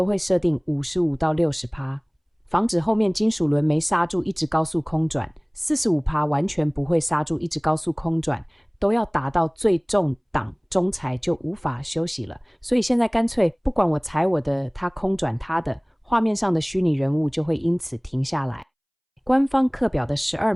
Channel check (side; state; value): both; identical; correlation 1.00